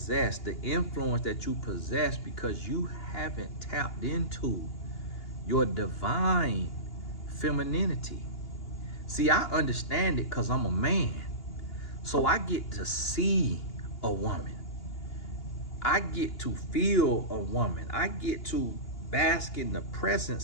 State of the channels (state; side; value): late; right; 2.8 ms